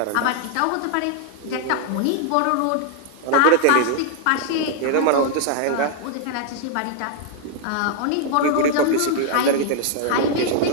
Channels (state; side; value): different; both; correlation 0.00